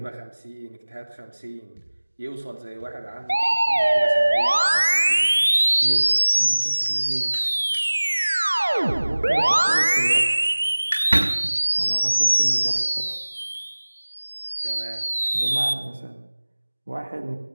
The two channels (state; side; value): inverted; both; correlation -1.00